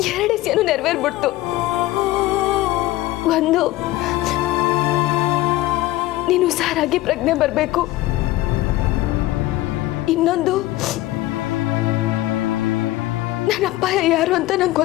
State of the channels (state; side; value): quieter; right; 16.8 dB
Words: 2 ವಿಷಯನೂ ನೆರವೇರ್ಬಿಡ್ತು. ಒಂದು, ನೀನು ಹುಷಾರಾಗಿ ಪ್ರಜ್ಞೆ ಬರಬೇಕು. ಇನ್ನೊಂದು, ನನ್ನ ಅಪ್ಪಾಯ ಯಾರು ಅಂತ ನಂಗೆ